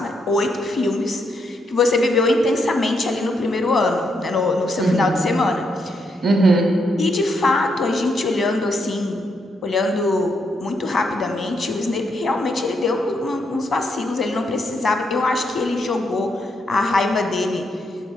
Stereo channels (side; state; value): both; normal; correlation 0.78